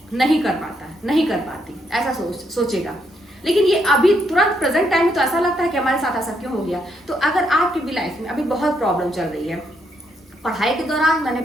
नहीं कर पाती, ऐसा सोचेगा। लेकिन ये अभी तुरंत प्रेजेंट टाइम में तो ऐसा लगता है कि हमारे साथ ऐसा क्यों हो गया। तो अगर आपकी भी लाइफ में अभी बहुत प्रॉब्लम चल रही है, पढ़ाई के दौरान मैंने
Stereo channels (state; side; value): normal; both; correlation 0.76